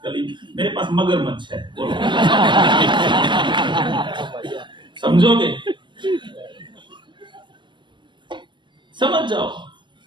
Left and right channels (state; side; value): late; left; 0.23 ms